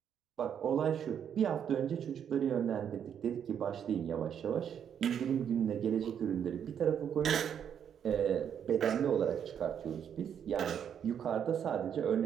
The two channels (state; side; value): quieter; left; 8.5 dB